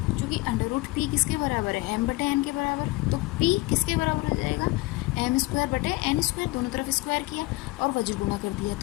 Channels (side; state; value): right; quieter; 21.6 dB